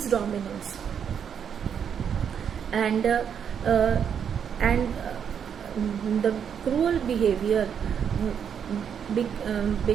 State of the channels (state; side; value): quieter; left; 7.8 dB